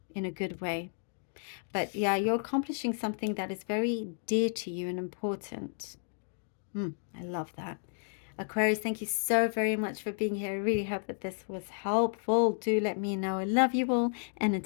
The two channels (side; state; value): right; silent; digital silence